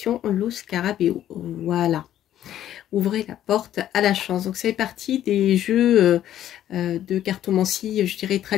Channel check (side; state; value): right; quieter; 11.8 dB